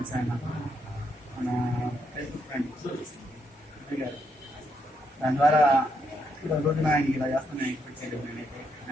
ఆయన మన ఫేస్బుక్ ఫ్రెండ్ గారు. దాని ద్వారా ఇప్పుడు రోజున ఆయనకి ఇలా చేస్తున్నాను ఎక్స్పెక్ట్ చేయలేదు. నేనైతే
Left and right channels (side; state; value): both; normal; correlation 0.77